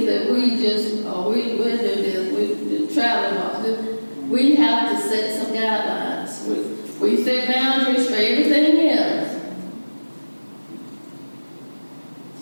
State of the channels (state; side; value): inverted; both; correlation -1.00